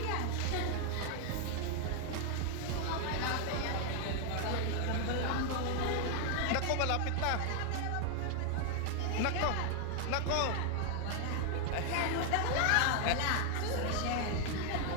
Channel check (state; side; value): different; both; correlation 0.00